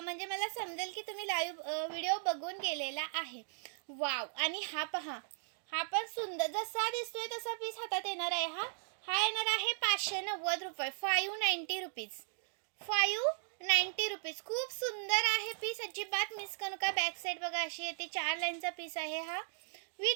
मला समजेल की तुम्ही लाईव्ह व्हिडिओ बघून गेलेला आहे. वाव. आणि हा पहा, हा पण सुंदर जसा दिसतोय तसा पीस हातात येणार आहे. हा येणार आहे 590 रुपये. 590 रुपीज. 590 रुपीज. खूप सुंदर आहे पीस, अजिबात मिस करू नका. बॅक साईड बघा अशी येते. 4 लाईनचा पीस आहे हा.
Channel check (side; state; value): left; silent; digital silence